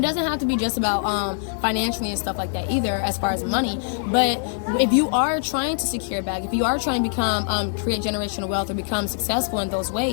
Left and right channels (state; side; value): silent; right; 63 dB below the other